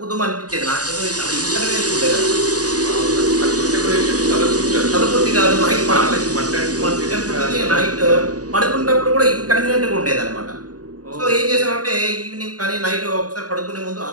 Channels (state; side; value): late; left; 0.68 ms